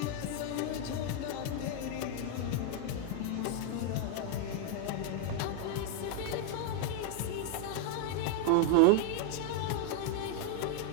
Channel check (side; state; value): both; different; correlation 0.01